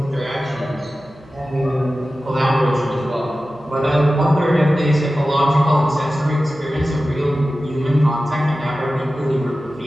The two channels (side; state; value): right; noise; hum, 26 dB below the sound